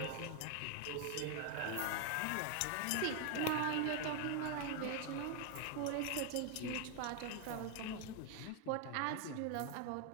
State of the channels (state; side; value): different; both; correlation 0.01